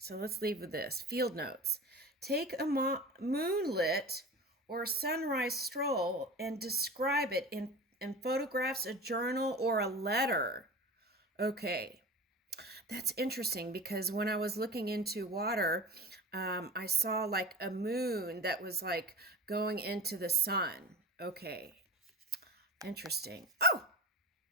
let's leave with this. Field notes. Take a moonlit or sunrise stroll and describe it in photographs, a journal, or a letter. Okay, that's interesting because when I was looking into water, I saw like a moon that was like going into the sun. Okay, interesting. Oh,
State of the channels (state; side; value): normal; both; correlation 0.33